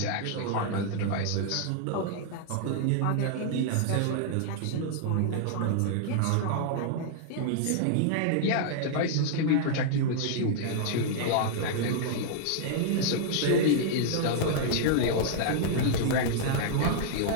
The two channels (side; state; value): both; different; correlation -0.01